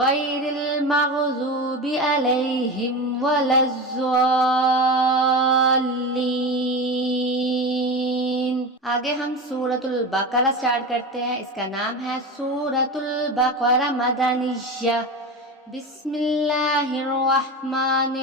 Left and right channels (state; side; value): normal; both; correlation 0.24